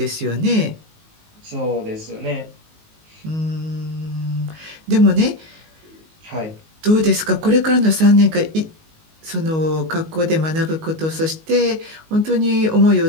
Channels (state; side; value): late; left; 19 ms